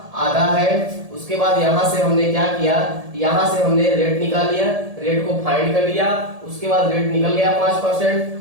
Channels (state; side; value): late; left; 1.7 ms